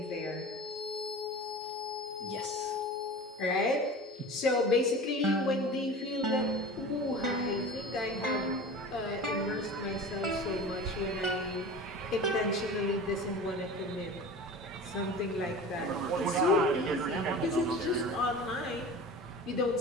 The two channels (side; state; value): both; normal; correlation 0.36